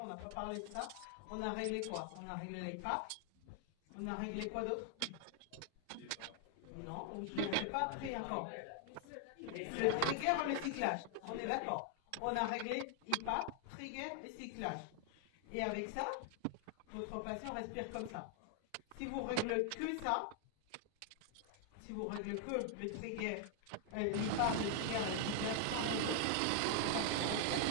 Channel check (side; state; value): both; different; correlation 0.00